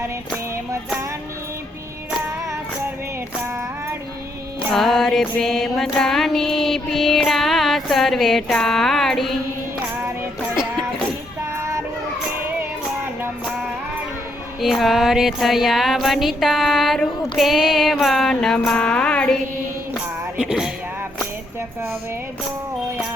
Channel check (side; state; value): both; normal; correlation 0.75